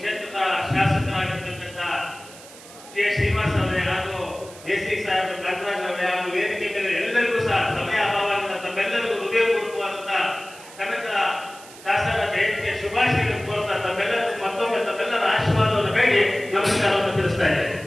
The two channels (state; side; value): noise; right; hiss, 19 dB below the sound